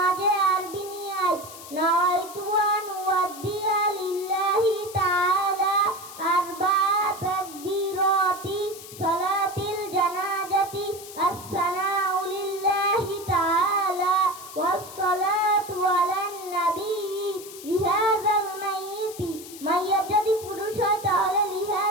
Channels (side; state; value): left; noise; hiss, 15 dB below the sound